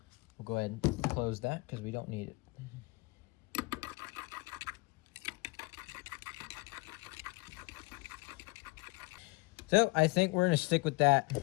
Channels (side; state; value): right; quieter; 25.6 dB